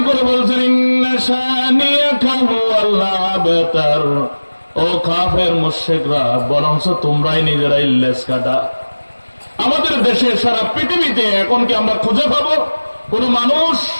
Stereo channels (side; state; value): both; inverted; correlation -1.00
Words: করে বলছেন ইন্না শানিয়াকা হুয়াল আবতার, ও কাফের মুশরিকরা বরঞ্চ তোমরাই নিজেরাই লেজ কাটা। আমাদের দেশে সারা পৃথিবীতে এখন কি আমরা খুঁজে পাবো কোন মানুষ